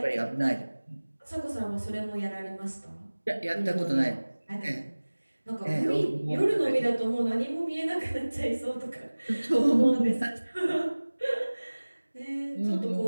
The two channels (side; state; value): both; inverted; correlation -1.00